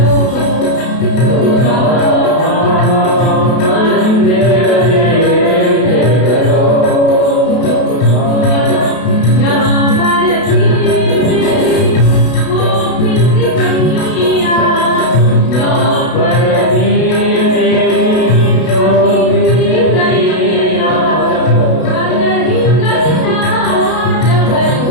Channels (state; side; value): late; right; 32 ms